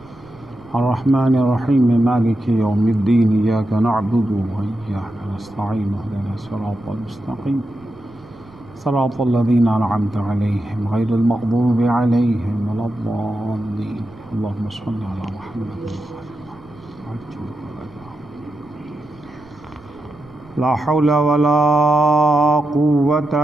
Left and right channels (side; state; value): right; noise; rumble, 25 dB below the sound